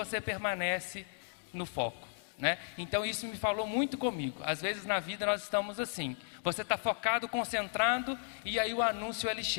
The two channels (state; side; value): silent; right; digital silence